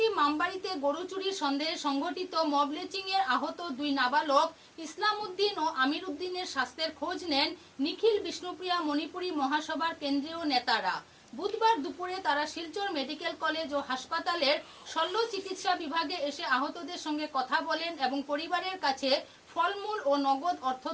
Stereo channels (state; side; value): identical; both; correlation 1.00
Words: মামবাড়িতে গরু চুরির সন্দেহে সংঘটিত মবলেচিং এর আহত 2 নাবালক ইসলাম উদ্দিন ও আমির উদ্দিনের স্বাস্থ্যের খোঁজ নেন নিখিল বিষ্ণুপ্রিয়া মণিপুরী মহাসভার কেন্দ্রীয় নেতারা। বুধবার দুপুরে তারা শিলচর মেডিকেল কলেজ ও হাসপাতালের শল্য চিকিৎসা বিভাগে এসে আহতদের সঙ্গে কথা বলেন এবং পরিবারের কাছে ফলমূল ও নগদ অর্থ